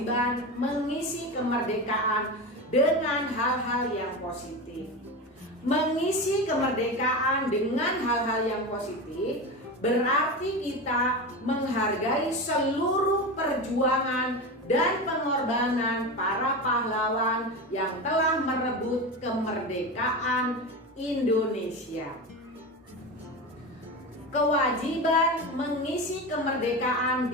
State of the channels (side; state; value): both; normal; correlation 0.23